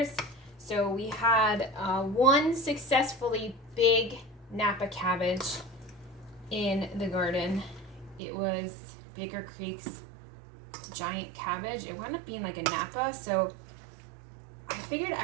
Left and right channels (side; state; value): left; drops out; at 8.2 s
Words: So we had one successfully big Napa cabbage in the garden. It was Baker Creek's giant cabbage. It wound up being like a Napa, so I figured